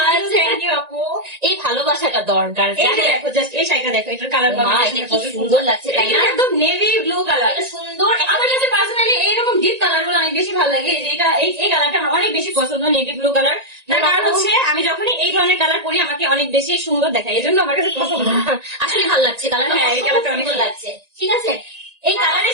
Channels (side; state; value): left; late; 1.9 ms